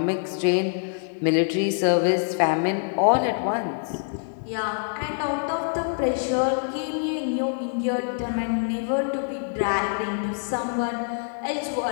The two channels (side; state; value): right; silent; digital silence